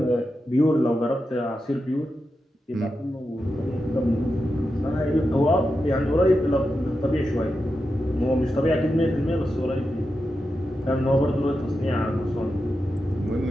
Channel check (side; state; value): both; normal; correlation 0.89